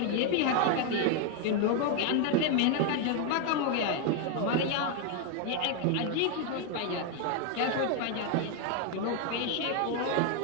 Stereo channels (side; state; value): both; different; correlation 0.01